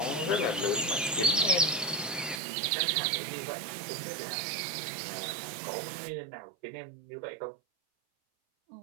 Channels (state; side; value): drops out; left; at 2.4 s